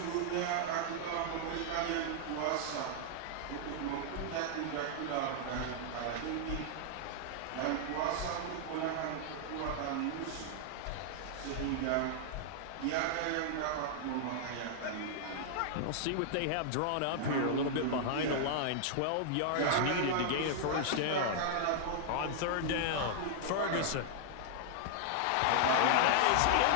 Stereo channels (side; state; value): both; different; correlation -0.01